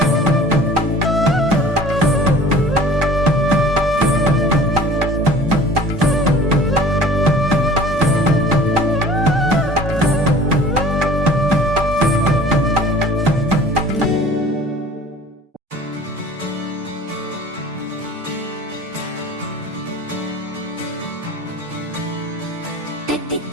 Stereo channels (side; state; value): both; normal; correlation 0.45